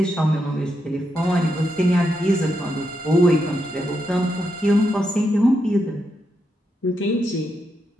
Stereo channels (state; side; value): normal; both; correlation 0.83